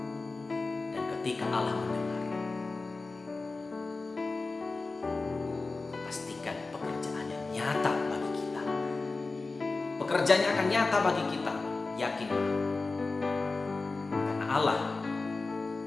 Dan ketika Allah mendengar, pastikan pekerjaannya nyata bagi kita. Pekerjaannya akan nyata bagi kita, yakinlah. Karena Allah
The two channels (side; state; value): right; quieter; 3.7 dB